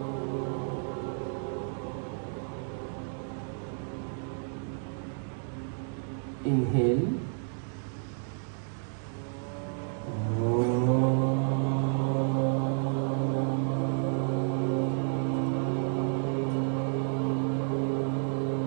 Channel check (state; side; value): silent; left; 57 dB below the other